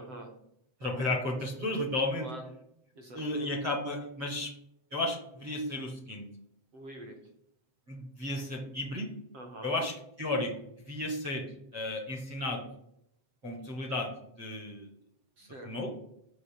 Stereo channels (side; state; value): left; late; 7.7 ms